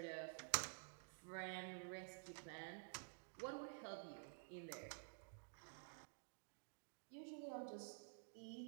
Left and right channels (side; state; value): left; silent; digital silence